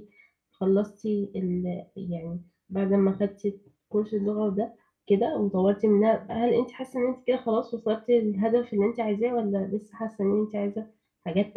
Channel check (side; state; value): both; identical; correlation 1.00